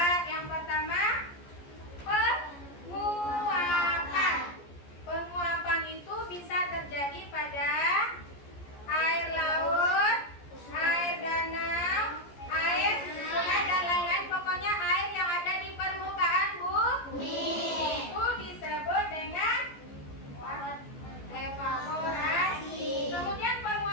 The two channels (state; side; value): late; right; 14 ms